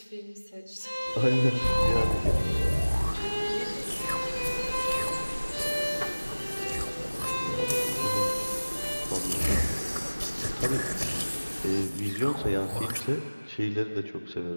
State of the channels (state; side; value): inverted; both; correlation -1.00